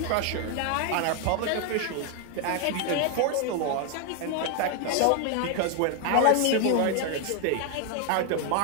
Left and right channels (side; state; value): both; different; correlation 0.01